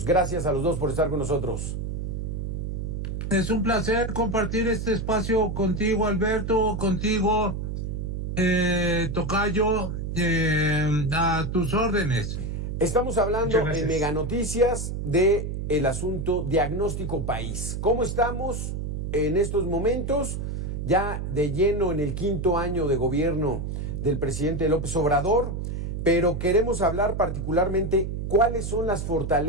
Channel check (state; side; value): noise; right; hum, 4 dB below the sound